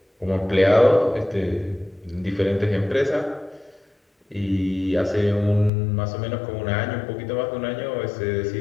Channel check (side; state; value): right; drops out; at 5.7 s